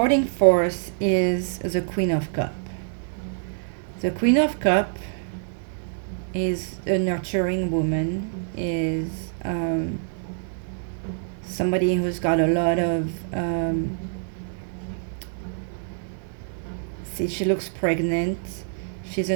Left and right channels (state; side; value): silent; left; digital silence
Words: force is the Queen of Cup. The Queen of Cup is a nurturing woman, is somebody who's got a lot of see, she looks pregnant. She's